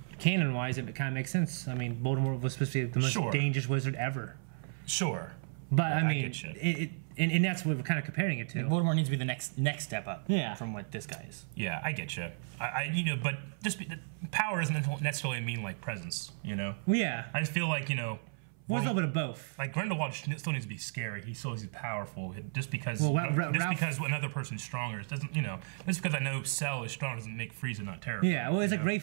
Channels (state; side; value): silent; left; 55 dB below the other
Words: canon-wise, it kind of makes sense. I mean, Voldemort was supposed to be the most dangerous wizard ever. Sure. But, I mean, and that's what we're kind of comparing it to. Voldemort needs to be the next step up from what this guy is. Yeah, I get you. But just power doesn't necessarily mean, like, presence, you know? Yeah. I just feel like, well, it's a little bit of both. Like, Grindelwald still needs to be scary. He still needs to be powerful. Just because because another person's stronger, it doesn't, just because I know Cell is strong doesn't make Frieza not terrible. Yeah, well, it's like